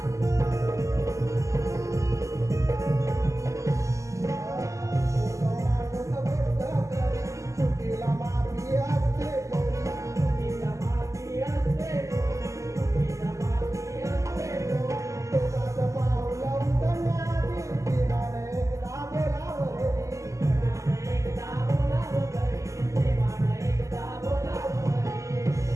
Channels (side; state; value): left; late; 0.15 ms